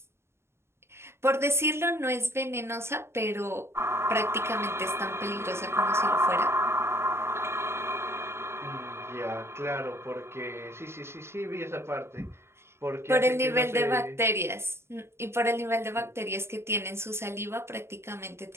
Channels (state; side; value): late; left; 0.12 ms